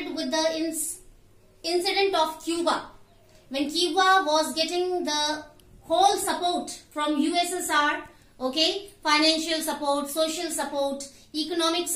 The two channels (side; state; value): both; identical; correlation 1.00